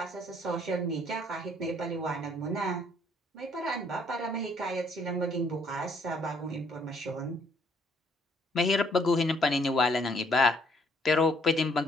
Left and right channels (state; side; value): normal; both; correlation 0.66